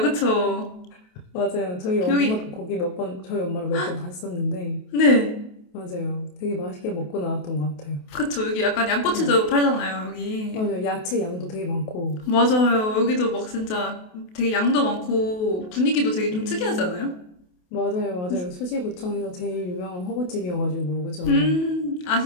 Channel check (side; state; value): right; late; 28 ms